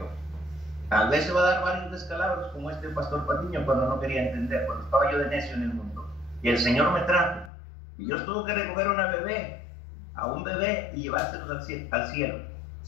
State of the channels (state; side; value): drops out; right; at 7.5 s